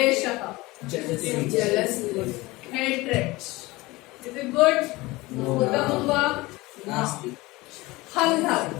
हेट्रेड इज इट गुड उत्तमं वा नास्ति हन् धातु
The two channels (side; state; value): right; quieter; 21.2 dB